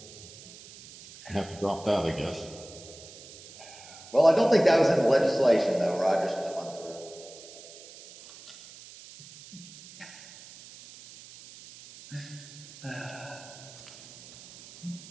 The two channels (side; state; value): right; noise; hiss, 18 dB below the sound